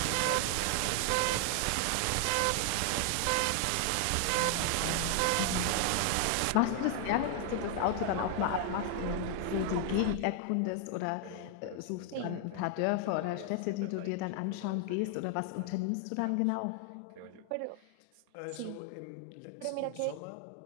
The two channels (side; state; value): both; different; correlation 0.00